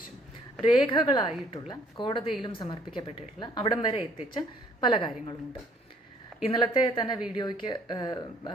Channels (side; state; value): both; normal; correlation 0.61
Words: രേഖകളായിട്ടുള്ള കോടതിയിലും സമർപ്പിക്കപ്പെട്ടിട്ടുള്ള അവിടം വരെ എത്തിച്ച പല കാര്യങ്ങളുമുണ്ട്. ഇന്നലത്തെ തന്നെ വീഡിയോയ്ക്ക്